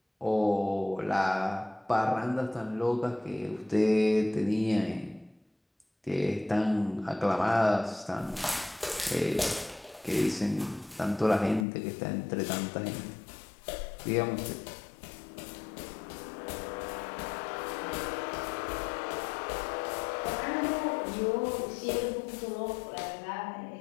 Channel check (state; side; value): drops out; right; at 11.7 s